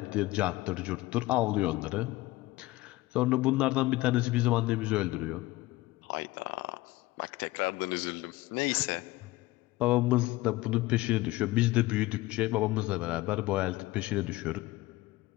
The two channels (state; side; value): quieter; right; 18.9 dB